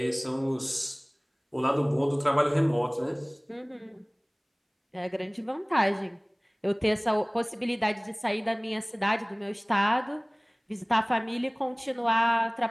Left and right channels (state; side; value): identical; both; correlation 1.00